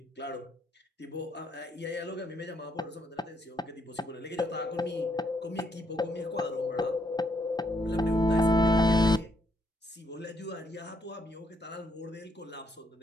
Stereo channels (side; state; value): both; normal; correlation 0.74